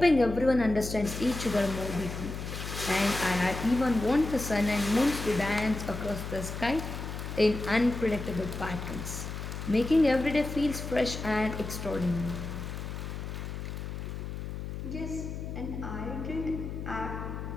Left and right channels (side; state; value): left; noise; hum, 6 dB below the sound